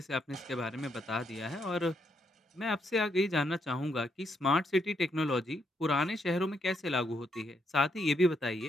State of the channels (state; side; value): normal; both; correlation 0.76